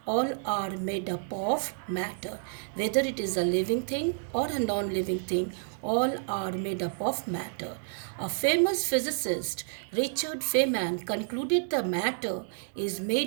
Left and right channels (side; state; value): left; silent; digital silence